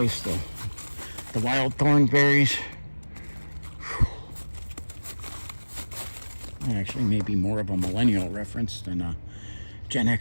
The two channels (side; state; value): both; inverted; correlation -1.00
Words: the wild thorn berries. Actually, maybe more of a millennial reference than a Gen